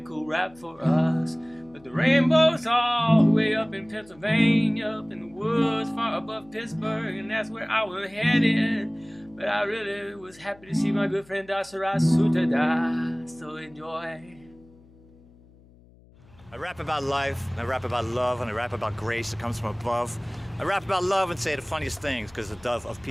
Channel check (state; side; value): noise; left; hum, 26 dB below the sound